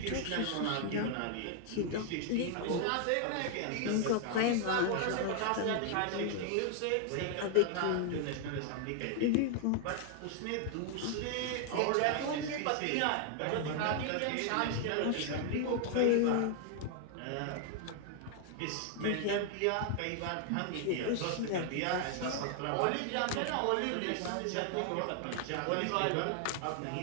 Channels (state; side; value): different; both; correlation 0.00